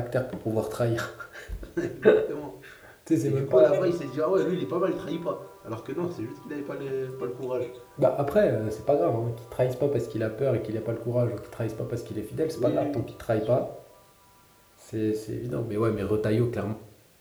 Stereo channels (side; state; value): both; identical; correlation 1.00